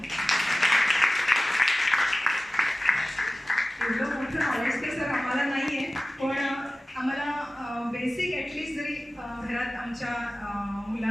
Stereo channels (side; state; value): both; normal; correlation 0.96